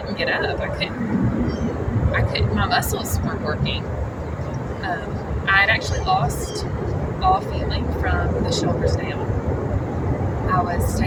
get up. I couldn't. My muscles weren't working. I had actually lost all feeling from the shoulders down. I was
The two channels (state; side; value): identical; both; correlation 1.00